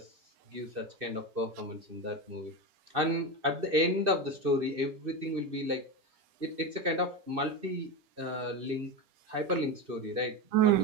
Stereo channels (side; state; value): left; late; 2.6 ms